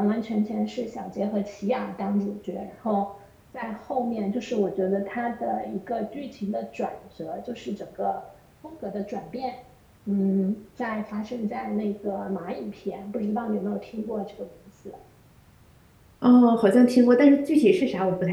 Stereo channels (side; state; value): both; identical; correlation 1.00